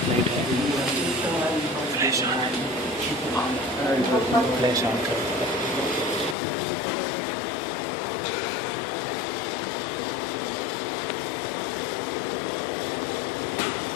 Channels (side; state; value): right; drops out; at 6.4 s